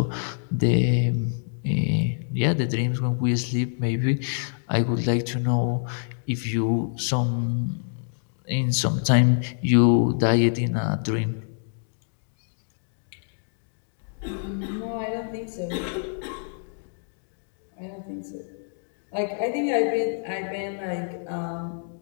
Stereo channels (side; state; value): right; silent; digital silence